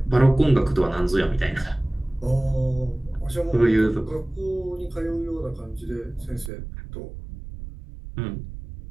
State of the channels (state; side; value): drops out; left; at 6.5 s